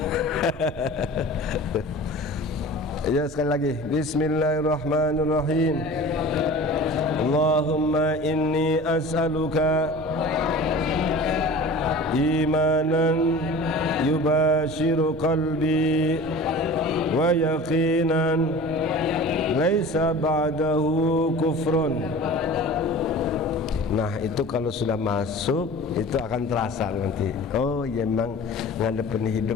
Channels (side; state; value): both; normal; correlation 0.39